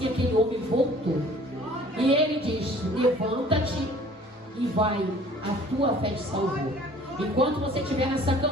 aquele homem voltou. E ele diz: levanta-te e vai, a tua fé te salvou. Enquanto você estiver nessa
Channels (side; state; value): both; normal; correlation 0.52